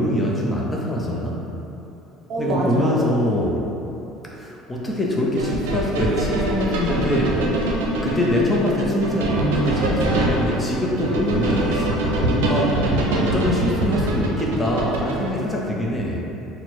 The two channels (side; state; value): both; normal; correlation 0.46